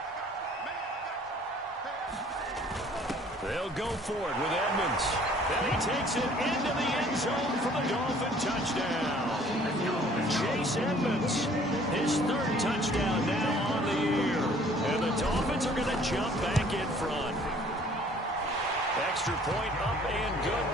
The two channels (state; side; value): normal; both; correlation 0.55